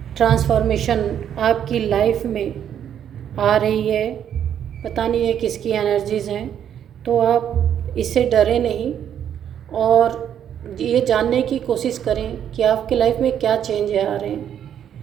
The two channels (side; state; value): left; quieter; 9.4 dB